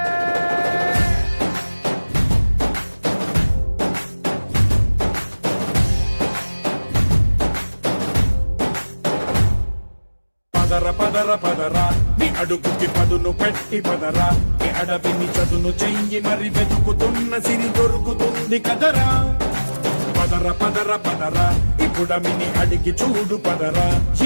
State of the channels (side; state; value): both; inverted; correlation -1.00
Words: పదర పదర పదరా నీ అడుగుకి పదును పెట్టి పదరా నీ అడవిని చదును చెయ్యి మరి వెతుకుతున్న సిరి దొరుకుతుంది కదరా పదర పదర పదరా ఇప్పుడమిని అడిగి చూడు పదరా